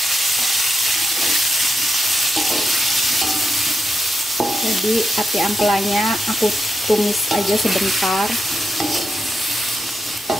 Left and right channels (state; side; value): normal; both; correlation 0.85